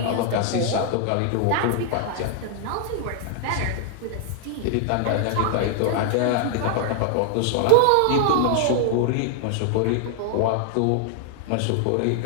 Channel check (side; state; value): both; different; correlation 0.00